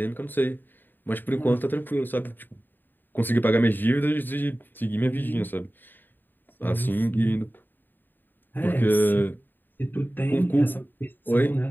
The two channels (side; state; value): right; late; 0.092 ms